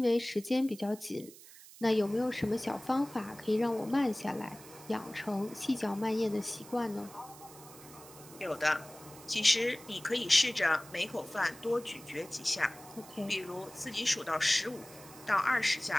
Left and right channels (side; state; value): right; noise; hiss, 19 dB below the sound